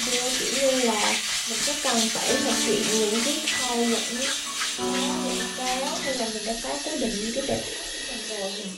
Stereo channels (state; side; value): identical; both; correlation 1.00